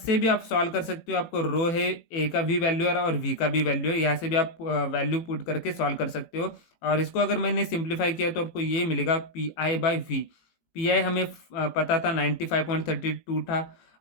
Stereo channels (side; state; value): right; late; 18 ms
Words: भी आप सॉल्व कर सकते हो, आपको रो है ए का भी वैल्यू है और वी का भी वैल्यू है, यहाँ से भी आप वैल्यू पुट करके सॉल्व कर सकते हो। और इसको अगर मैंने सिंप्लीफाई किया तो आपको ये मिलेगा P I by V. P I हमें पता था 95.32 था,